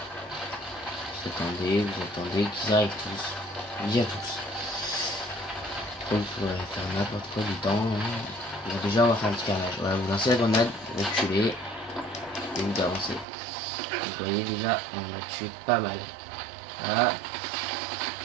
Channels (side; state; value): left; drops out; at 13.2 s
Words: Vous attendez qu'ils arrivent tous. Bien tous. Donc vous pourrez faire n'importe quoi du temps. Bon, déjà on va faire un petit carnage. Voilà, vous lancez la grenade, vous reculez et vous avancez. Vous voyez déjà on a tué pas mal. Voilà.